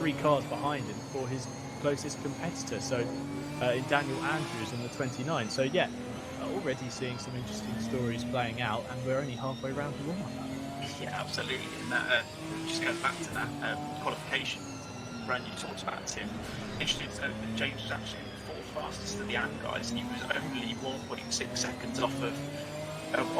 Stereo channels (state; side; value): identical; both; correlation 1.00